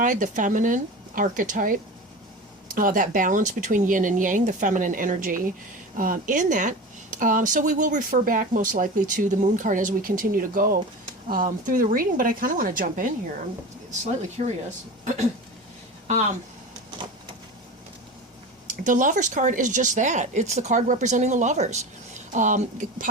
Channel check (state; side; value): normal; both; correlation 0.30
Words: the feminine archetype. That balance between yin and yang, the feminine energy in that. So we will refer back most likely to the Moon card as we continue to go through the reading, but I kind of want to jump in here. I'm slightly curious. The Lover's card is just that. It's the card representing the lovers.